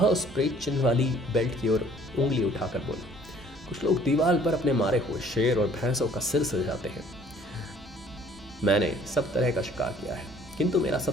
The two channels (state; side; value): normal; both; correlation 0.56